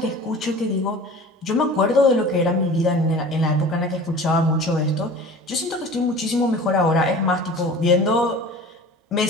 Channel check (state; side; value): normal; both; correlation 0.40